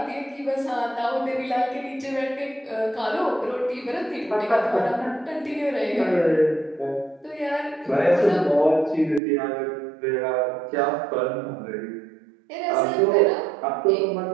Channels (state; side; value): drops out; left; at 9.2 s